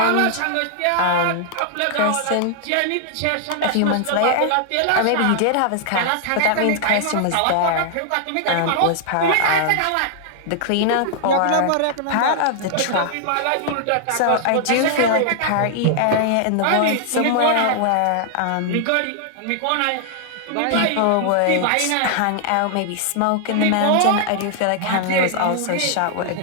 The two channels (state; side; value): different; both; correlation -0.01